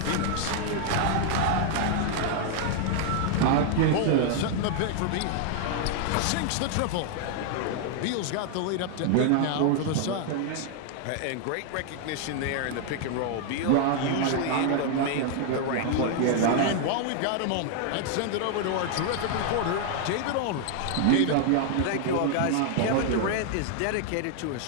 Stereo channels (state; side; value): different; both; correlation 0.00